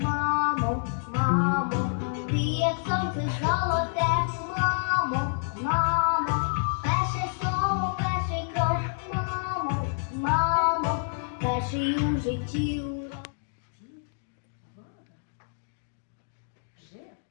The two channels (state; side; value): silent; right; digital silence